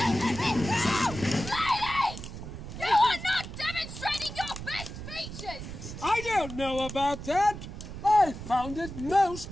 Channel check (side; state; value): right; noise; rumble, 10 dB below the sound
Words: You are not demonstrating your best features! I don't know about that. I found it